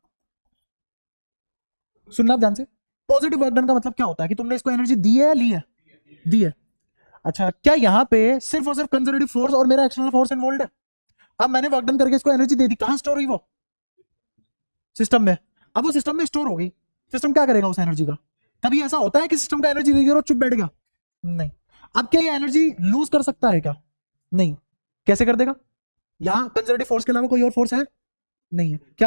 सुनना ध्यान से, पॉजिटिव वर्क डन का मतलब क्या होता है कि तुमने इसको एनर्जी दी है, ली है, दी है। अच्छा क्या यहाँ पे सिर्फ और सिर्फ कंजर्वेटिव फोर्स और मेरा एक्सटर्नल फोर्स इन्वॉल्व है? अब मैंने वर्क डन करके इसको एनर्जी दे दी, कहां स्टोर हुई? वो सिस्टम में। अब वो सिस्टम में स्टोर हो गई, सिस्टम क्या करेगा उस एनर्जी का? कभी ऐसा होता है कि सिस्टम का एनर्जी दे और चुप बैठ गया? नहीं। अब क्या ये एनर्जी लूज कर सकता है क्या? नहीं। कैसे कर देगा? यहाँ कंजर्वेटिव फोर्स के अलावा कोई और फोर्स है नहीं है,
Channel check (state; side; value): inverted; both; correlation -1.00